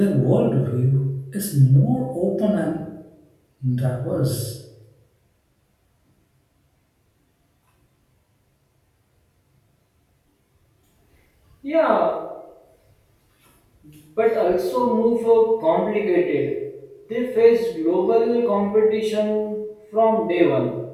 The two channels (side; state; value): both; identical; correlation 1.00